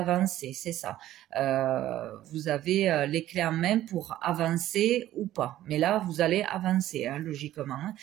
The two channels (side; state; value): left; quieter; 13.6 dB